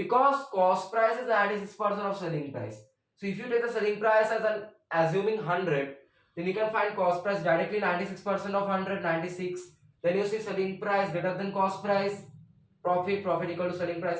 cost price is 96% of selling price. So if you take the selling price as an assuming 100, then you can find cost price directly 96% of 100, 96. Then you see selling price greater than cost price. Profit equal to selling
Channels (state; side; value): identical; both; correlation 1.00